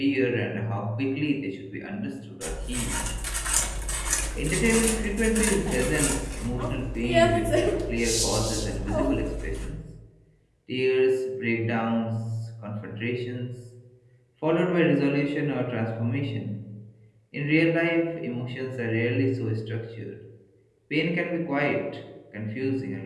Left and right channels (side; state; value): both; identical; correlation 1.00